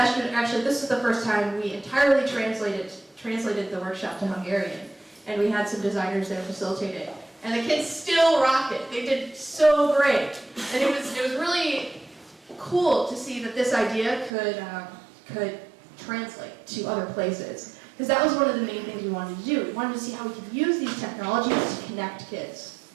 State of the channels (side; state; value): left; drops out; at 14.3 s